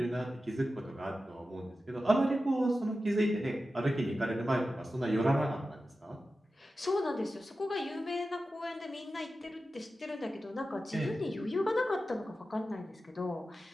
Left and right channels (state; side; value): normal; both; correlation 0.93